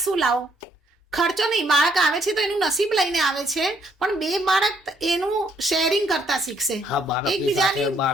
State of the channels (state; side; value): normal; both; correlation 0.69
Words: શું લાવો? ખર્ચો નહીં, બાળક આવે છે તો એનું નસીબ લઈને આવે છે, પણ બે બાળક એનું શેરિંગ કરતા શીખશે. હા, બાળકની સાથે